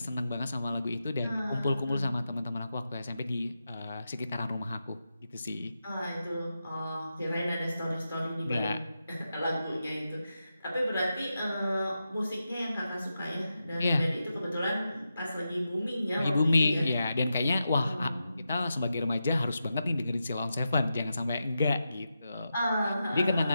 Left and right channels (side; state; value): both; inverted; correlation -0.89